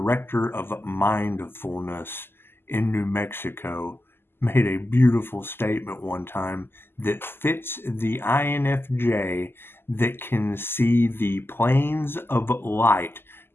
of mindfulness in New Mexico, made a beautiful statement one time that fits the INFJ that can see the planes of light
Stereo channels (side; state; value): right; late; 0.11 ms